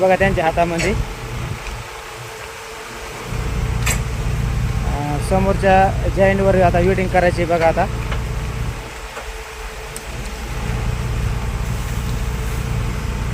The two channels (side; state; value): both; identical; correlation 1.00